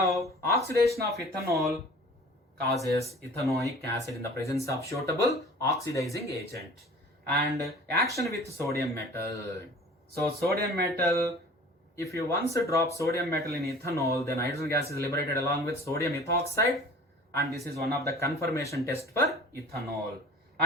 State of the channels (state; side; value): normal; both; correlation 0.44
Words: oxidation of ethanol causes ethanoic acid in the presence of suitable oxidizing agent. And action with sodium metal. So sodium metal, if you once drop sodium metal in ethanol, then hydrogen gas is liberated along with sodium ethoxide, and this is one of the confirmation test for ethanol.